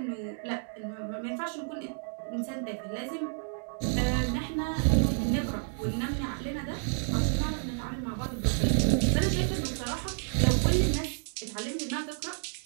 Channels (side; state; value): left; silent; 58 dB below the other